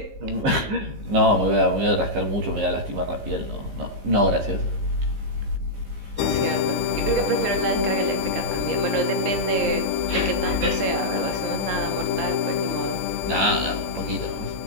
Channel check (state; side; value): late; left; 15 ms